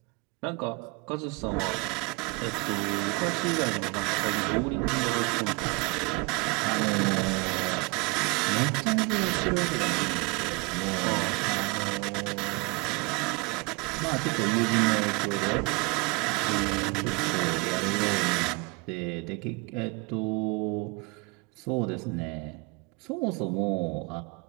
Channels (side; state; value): left; quieter; 28.0 dB